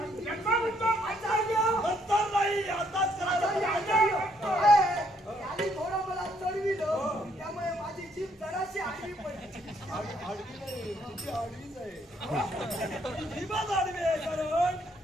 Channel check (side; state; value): both; normal; correlation 0.69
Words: नंतर नाही आताच थोडं मला चढविलं त्यामुळे माझी जीभ जराशी आडवी पडली. आडवी नाही तुझी आडवीच आहे. जीभच आडवी आहे कारण